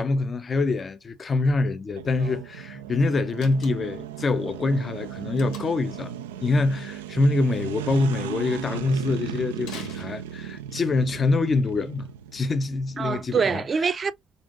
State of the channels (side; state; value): both; normal; correlation 0.80